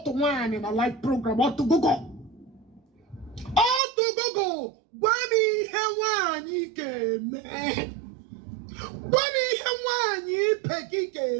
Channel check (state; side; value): drops out; left; at 3.8 s